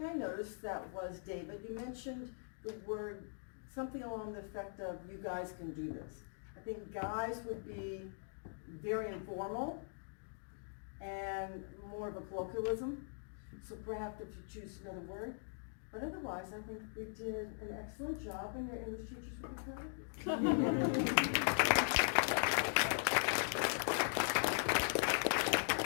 I noticed that was, David, you mentioned the word, something along the effect of, you guys can do this. I think guys would be very informal and more of a colloquialism. So perhaps if you choose another word. But otherwise, I think we did an excellent job, and your English teachers will be proud.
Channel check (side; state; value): right; silent; digital silence